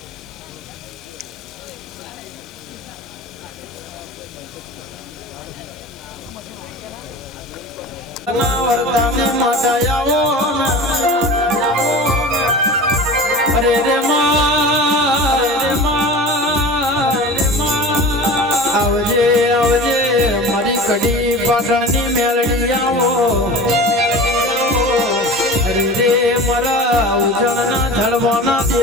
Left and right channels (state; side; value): normal; both; correlation 0.35